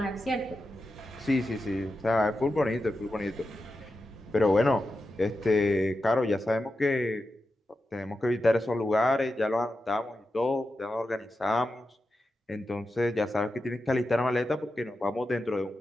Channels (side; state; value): both; normal; correlation 0.90